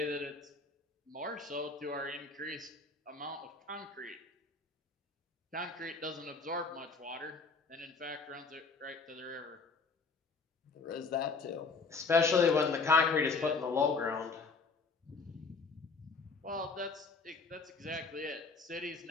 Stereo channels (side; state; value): right; quieter; 4.3 dB